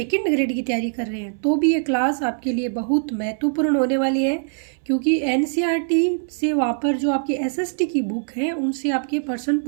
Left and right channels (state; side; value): silent; left; 63 dB below the other